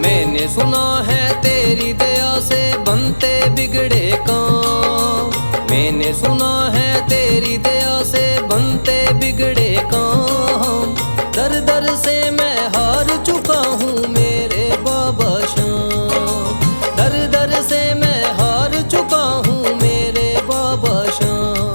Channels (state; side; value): inverted; both; correlation -1.00